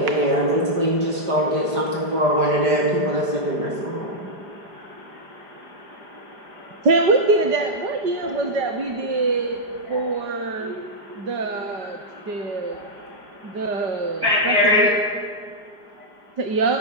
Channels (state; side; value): late; left; 5.0 ms